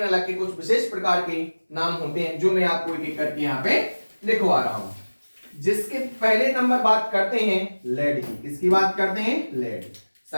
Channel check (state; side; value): inverted; both; correlation -1.00